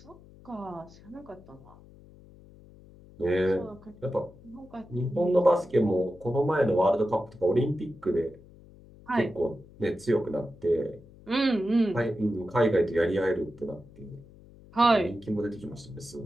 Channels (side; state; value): left; noise; hum, 22 dB below the sound